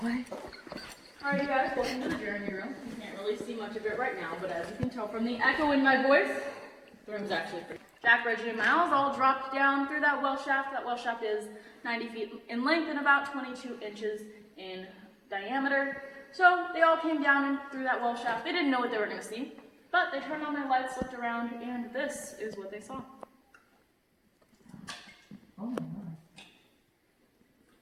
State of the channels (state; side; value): identical; both; correlation 1.00